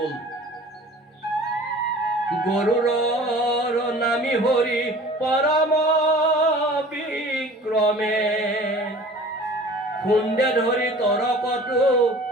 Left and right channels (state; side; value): normal; both; correlation 0.45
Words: গৰুৰৰ নামি হৰি পৰম বিক্ৰমে, খুন্দে ধৰি তৰকতো